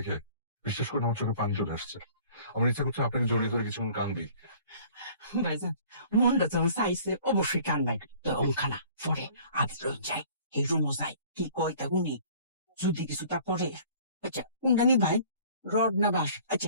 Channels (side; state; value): both; inverted; correlation -0.51